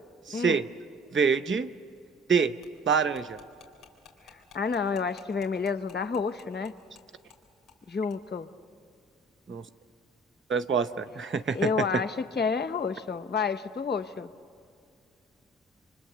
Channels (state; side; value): normal; both; correlation 0.48